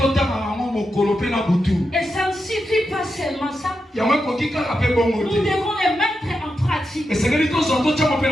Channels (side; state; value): both; normal; correlation 0.87